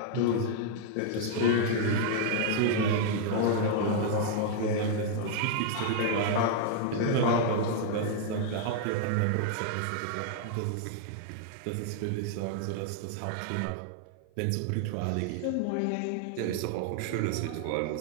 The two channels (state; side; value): different; both; correlation -0.01